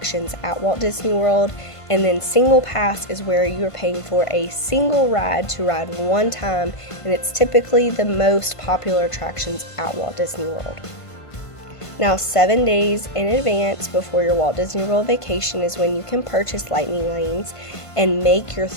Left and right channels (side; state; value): right; late; 1.5 ms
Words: at Walt Disney World, and then Singlepass is where you are paying for a single ride to ride one time, and it's typically the most popular attractions at Walt Disney World. Now, 7 days in advance before your Walt Disney World vacation is when you can purchase lightning lanes and make your